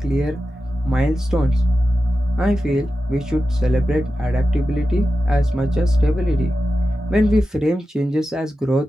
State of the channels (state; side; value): normal; both; correlation 0.92